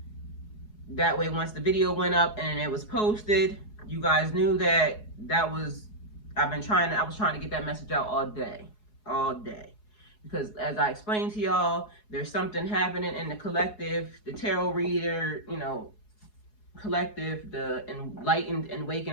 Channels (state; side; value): late; right; 4.8 ms